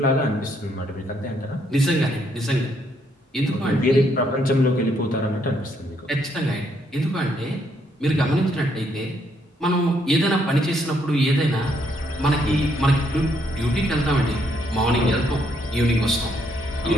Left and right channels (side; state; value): both; normal; correlation 0.72